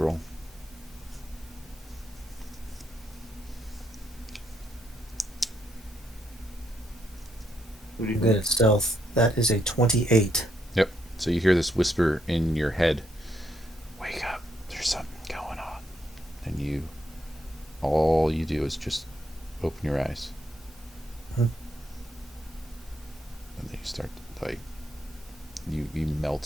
I'm good at stealth. That is a 28. Yep. So you hear this whisper in your head. Wake up. There's something going on. And all you do is just open your eyes. And then you start to, you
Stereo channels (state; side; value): normal; both; correlation 0.76